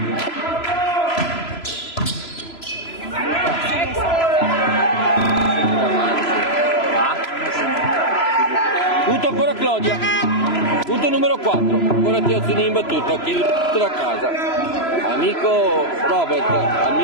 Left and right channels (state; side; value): late; right; 3.0 ms